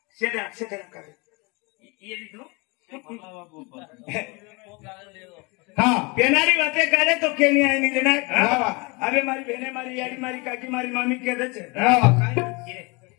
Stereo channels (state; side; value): quieter; right; 27.9 dB